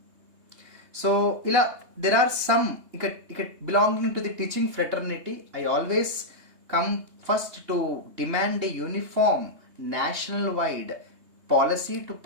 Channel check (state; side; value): late; left; 3.2 ms